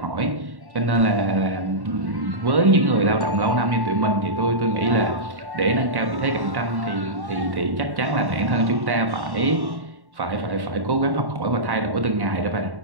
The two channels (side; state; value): left; late; 1.1 ms